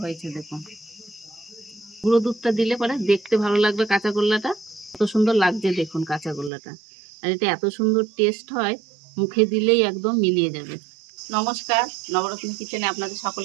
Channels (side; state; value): left; drops out; at 6.5 s